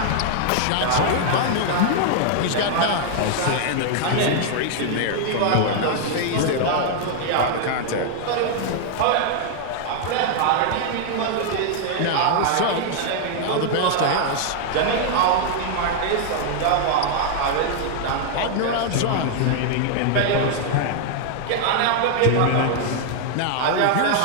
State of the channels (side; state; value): both; different; correlation 0.00